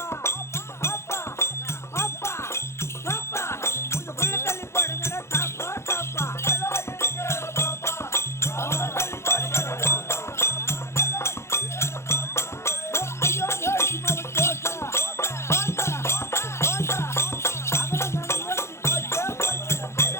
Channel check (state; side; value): late; right; 0.13 ms